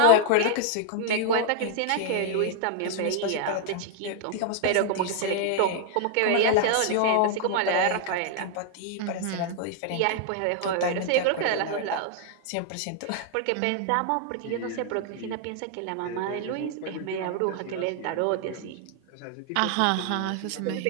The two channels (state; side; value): different; both; correlation 0.00